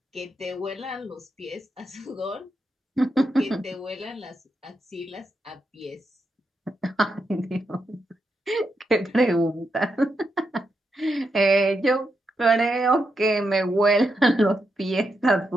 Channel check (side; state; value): both; normal; correlation 0.84